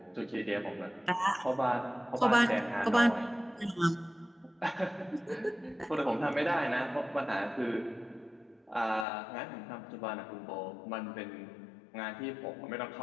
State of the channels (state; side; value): drops out; right; at 9.1 s